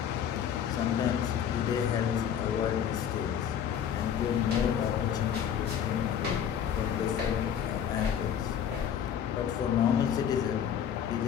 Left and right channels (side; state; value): right; quieter; 8.8 dB